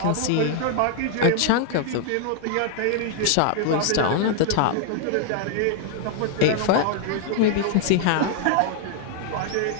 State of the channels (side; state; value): both; different; correlation 0.00